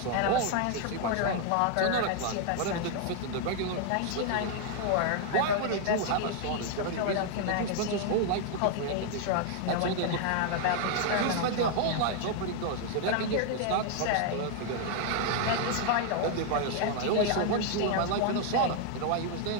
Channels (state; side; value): different; both; correlation 0.00